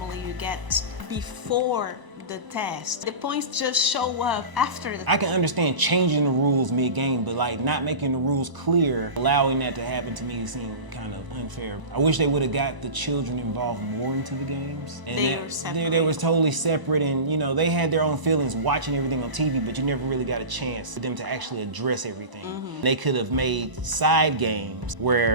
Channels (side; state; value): left; late; 1.0 ms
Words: you get before the test. The points just show up after the test. I can understand changing the rules mid-game, but like not making the rules clear, allowing that to happen to me seemed kind of unfair. I wish they would have got the children involved more into the games. And they were totally separate, and they had their own feelings watching everything on TV, but you never really got a chance for them to actually address everything. They could have made side games